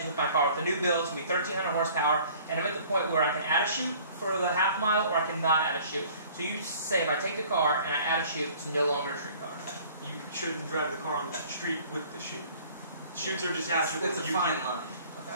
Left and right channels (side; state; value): both; inverted; correlation -0.51